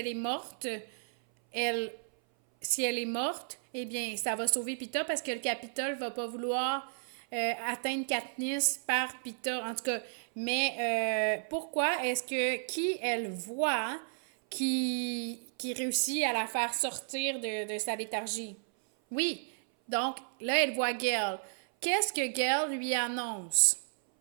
est morte, elle, si elle est morte, eh bien, ça va sauver Pita parce que le Capitole va pas vouloir atteindre Katniss par Pita. En tout cas, mais pourquoi est-ce que qui elle voit qui réussit à la faire sortir de sa léthargie? Oui, donc là, elle voit Gale. Qu'est-ce que Gale lui annonce?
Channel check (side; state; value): left; silent; 56 dB below the other